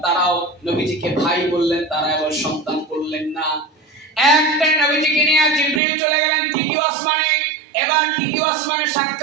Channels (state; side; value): drops out; left; at 5.8 s